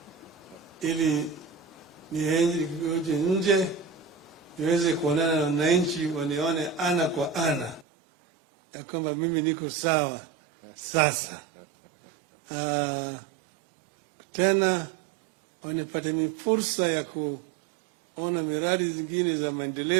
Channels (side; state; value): left; drops out; at 7.9 s